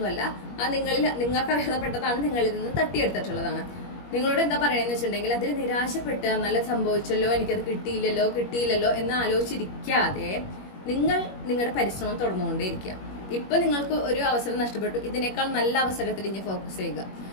അത് നിങ്ങൾക്ക് അർഹതപ്പെട്ടതാണ്, നിങ്ങളിൽ നിന്ന് തട്ടിയെടുത്തിട്ടുള്ളതാണ്. നിങ്ങളോട് എന്താ പറയണെന്ന് വെച്ചിട്ടുണ്ടെങ്കിൽ, അതിൽ നിരാശപ്പെട്ട് നല്ല സംഭവിച്ചല്ലോ, എനിക്കത് കിട്ടിയില്ലല്ലോ എന്ന് ആലോചിച്ചിരിക്കാതെ നിങ്ങൾ നിങ്ങളുടെ പരിശ്രമം തുടർന്നുകൊണ്ടേയിരിക്കുക. ഇപ്പൊ നിങ്ങൾക്ക് ഒരു അവസരം നഷ്ടപ്പെട്ടു, ഇതിനേക്കാൾ നല്ല അവസരത്തിൽ ഇനി ഫോക്കസ് ചെയ്യുക.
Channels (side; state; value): right; late; 21 ms